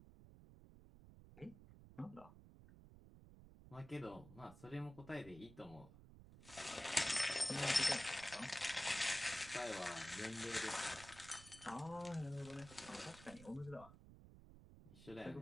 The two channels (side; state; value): right; noise; rumble, 17 dB below the sound